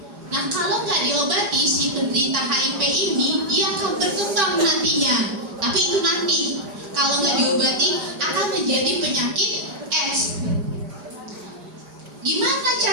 Nah kalau nggak diobati si penderita HIV ini, dia akan berkembang nantinya. Tapi itu nanti. Kalau nggak diobati akan menjadi penyakit AIDS. Gimana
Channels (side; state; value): left; late; 5.0 ms